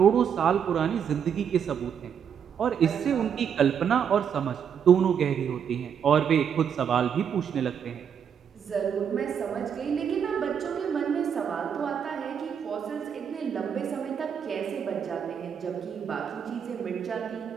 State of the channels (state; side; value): quieter; left; 7.8 dB